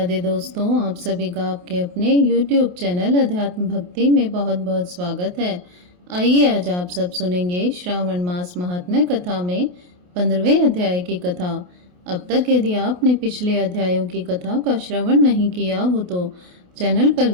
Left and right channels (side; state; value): left; late; 28 ms